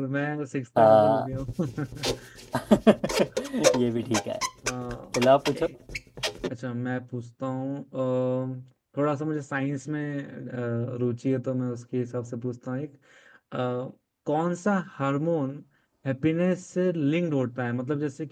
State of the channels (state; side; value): identical; both; correlation 1.00